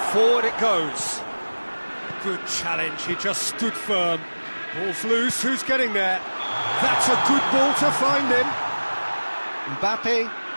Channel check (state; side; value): inverted; both; correlation -1.00